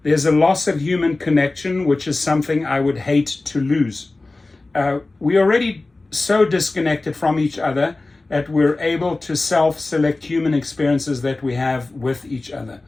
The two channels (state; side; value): quieter; right; 3.2 dB